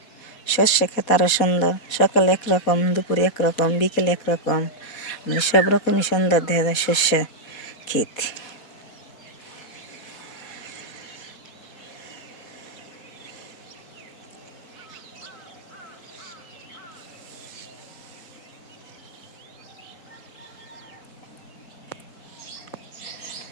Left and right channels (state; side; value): late; right; 4.2 ms